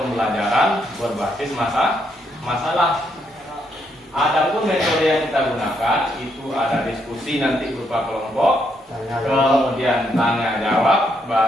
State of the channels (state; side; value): normal; both; correlation 0.76